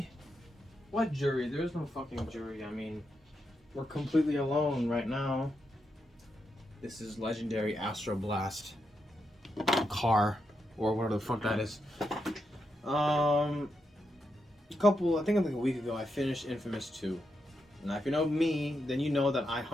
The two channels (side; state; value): both; normal; correlation 0.84